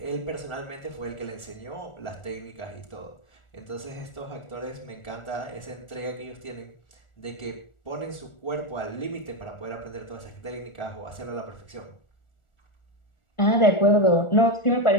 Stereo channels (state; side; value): late; right; 1.4 ms